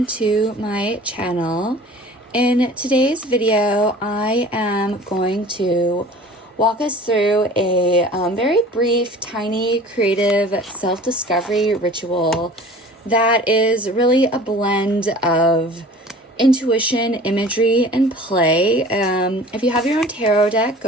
to my channel. In today's video, I am going to walk us through a very brief, tiny, creative self-discovery ritual that is really a blend of intuition, imagery, and play. If you have your own tarot deck,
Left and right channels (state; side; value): normal; both; correlation 0.45